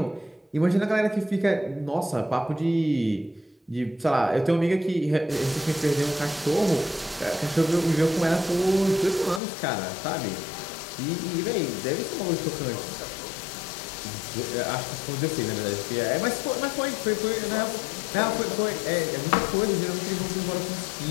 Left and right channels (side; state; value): right; drops out; at 9.4 s